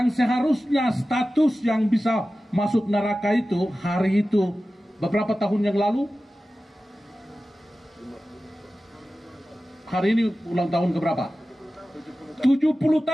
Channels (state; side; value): normal; both; correlation 0.95